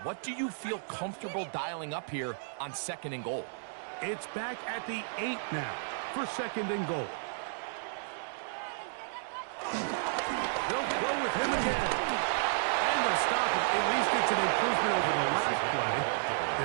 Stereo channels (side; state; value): left; silent; digital silence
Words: what do you feel comfortable dialing up here on second and goal. It's back at the 8 now for second and goal. They'll go with him again. And they'll stop it. At least it's an improvement over the last play.